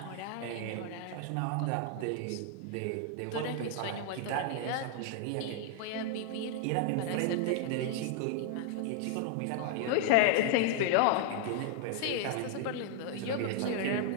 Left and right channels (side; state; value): both; different; correlation 0.00